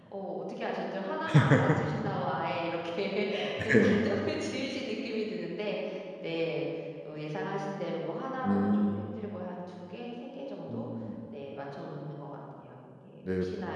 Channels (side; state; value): both; identical; correlation 1.00